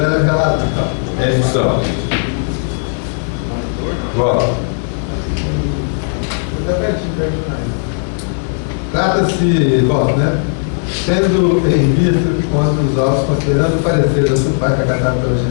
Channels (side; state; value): right; silent; digital silence